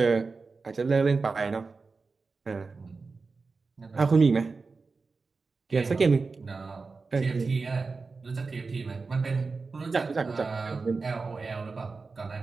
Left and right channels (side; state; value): left; quieter; 4.2 dB